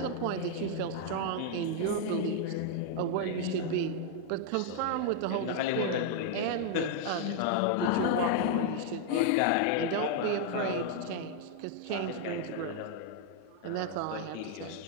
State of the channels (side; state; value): both; different; correlation 0.00